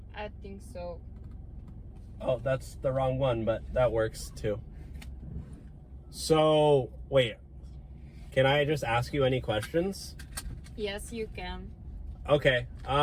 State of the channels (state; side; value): identical; both; correlation 1.00